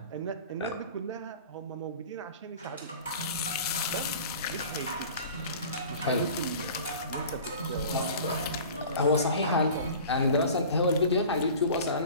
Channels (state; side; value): inverted; both; correlation -0.41